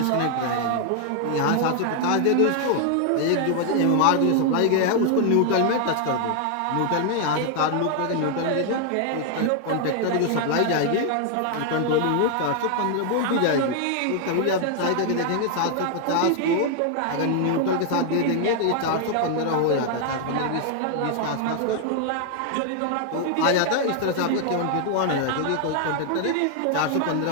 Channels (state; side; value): different; both; correlation 0.00